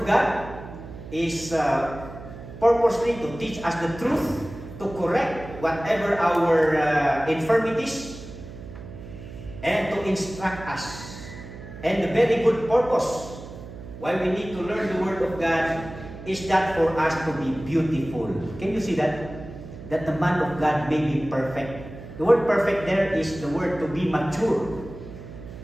God is purposely to teach us the truth, to correct whatever our infirmities, and to instruct us. And the very good purpose why we need to learn the Word of God is that for us to be beautiful. Can you see that? That the man of God may be perfect. The word perfect there is the word to be mature,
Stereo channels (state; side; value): noise; right; hum, 13 dB below the sound